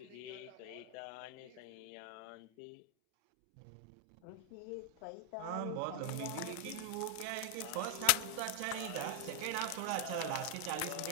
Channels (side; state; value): both; different; correlation 0.00